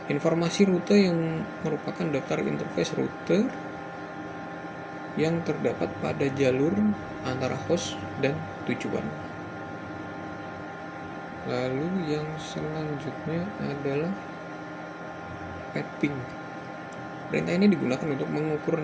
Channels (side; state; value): both; identical; correlation 1.00